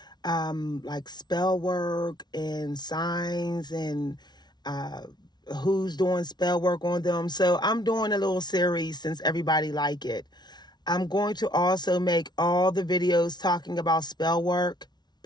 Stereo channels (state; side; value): late; right; 0.20 ms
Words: like spell work and signs and who's doing spell work on them. So I'm doing a little series since everybody like it. I'm going to also make all the videos talking about spell work